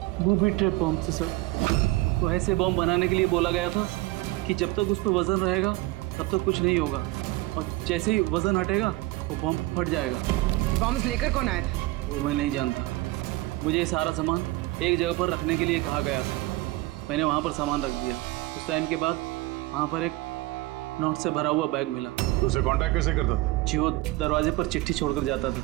बूबी ट्रैप बॉम्ब थे सर। वो ऐसे बॉम्ब बनाने के लिए बोला गया था कि जब तक उस पर वजन रहेगा तब तक कुछ नहीं होगा, और जैसे ही वजन हटेगा वो बॉम्ब फट जाएगा। बॉम्ब्स लेकर कौन आया था? वो मैं नहीं जानता। मुझे ये सारा सामान एक जगह पर रखने के लिए कहा गया था, मैंने वहाँ पर सामान रख दिया। उस टाइम के बाद वहाँ पर एक नोट से भरा हुआ बैग मिला। तो उसे कांटेक्ट कैसे करता था? जी वो दरवाजे पर चिट्ठी छोड़कर जाता था,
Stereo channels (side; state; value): left; quieter; 19.6 dB